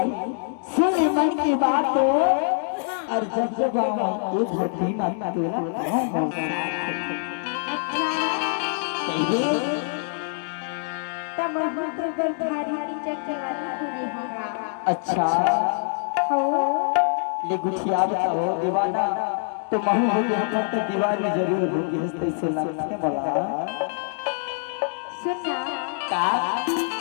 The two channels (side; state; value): right; silent; 62 dB below the other